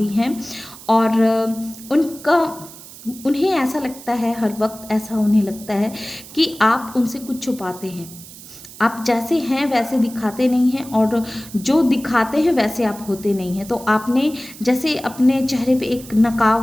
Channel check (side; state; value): right; noise; hiss, 17 dB below the sound